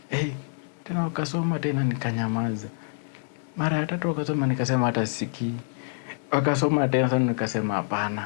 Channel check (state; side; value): silent; right; digital silence